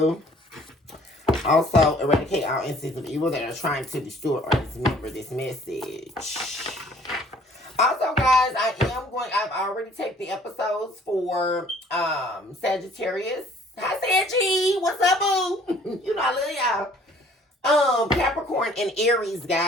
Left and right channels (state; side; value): normal; both; correlation 0.56